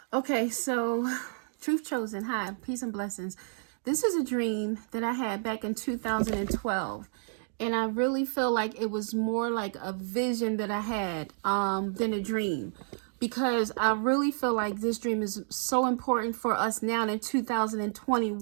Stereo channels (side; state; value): left; silent; digital silence